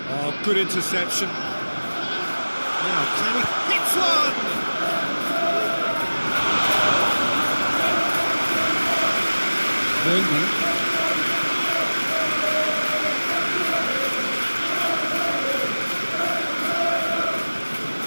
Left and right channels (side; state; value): both; inverted; correlation -1.00